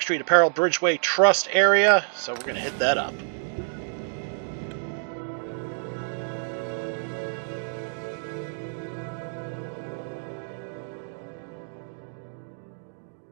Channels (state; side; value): silent; left; digital silence